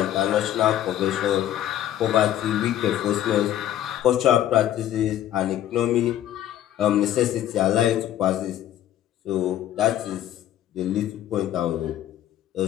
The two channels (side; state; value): right; quieter; 11.9 dB